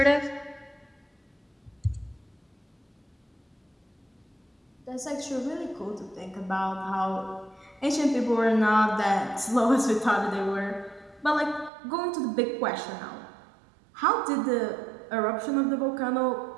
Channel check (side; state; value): left; drops out; at 11.7 s